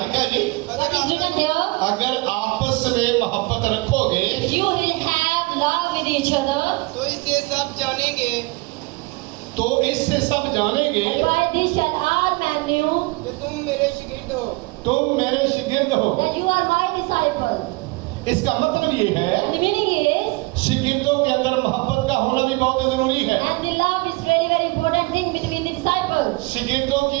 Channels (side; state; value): left; quieter; 25.3 dB